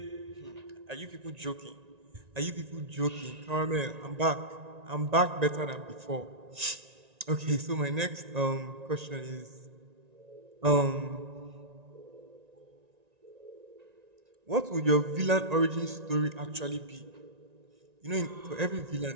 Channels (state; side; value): late; left; 1.9 ms